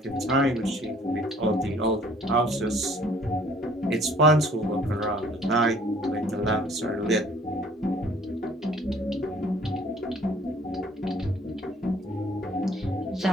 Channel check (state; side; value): normal; both; correlation 0.56